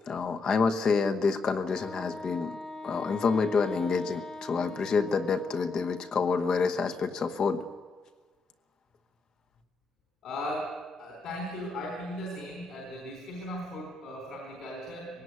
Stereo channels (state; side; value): quieter; right; 4.2 dB